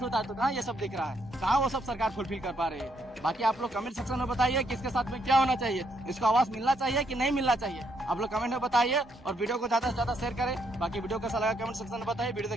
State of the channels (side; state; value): both; normal; correlation 0.74